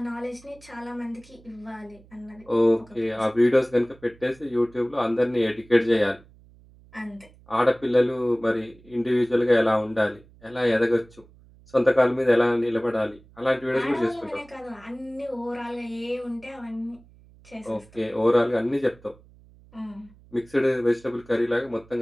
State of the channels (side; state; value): right; noise; hum, 26 dB below the sound